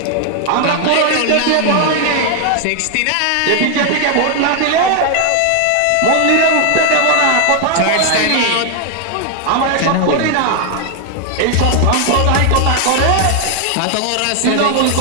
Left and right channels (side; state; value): both; different; correlation 0.00